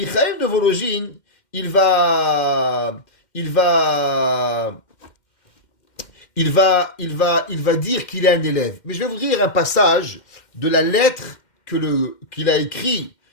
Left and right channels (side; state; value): right; late; 2.1 ms